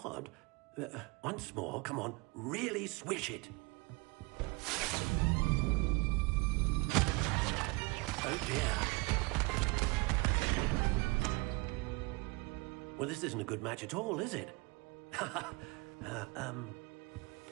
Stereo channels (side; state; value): left; quieter; 26.6 dB